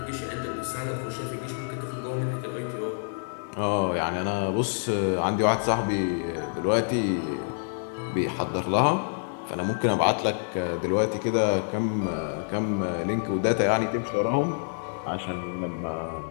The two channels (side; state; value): right; silent; 60 dB below the other